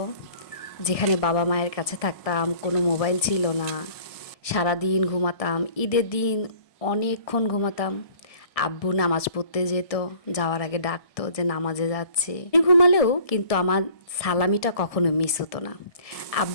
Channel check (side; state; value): right; late; 1.6 ms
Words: যেখানে বাবা মায়ের কাছে থাকতাম, কোনো মোবাইল ছিল না, সারাদিন ঘুমাতাম। ঈদের দিন অনেকক্ষণ ঘুমাতাম। আব্বু নামাজ পড়তে যেত, যাওয়ার আগে ডাকতো যে নামাজে যাচ্ছি। ঘুমালেও কিন্তু আমার সালামিটা কখনো মিস হতো না।